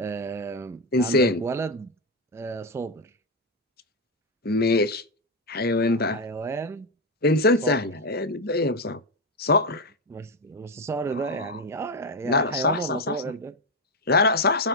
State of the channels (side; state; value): both; normal; correlation 0.08